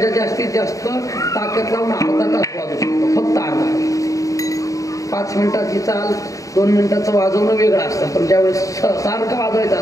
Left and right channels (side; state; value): right; late; 0.16 ms